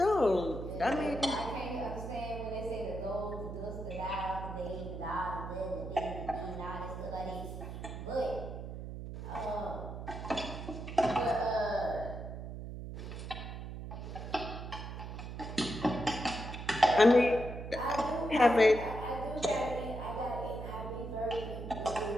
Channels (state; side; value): noise; right; hum, 8 dB below the sound